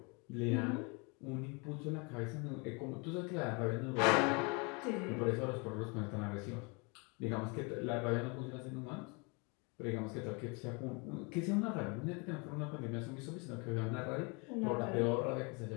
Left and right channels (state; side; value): quieter; right; 31.2 dB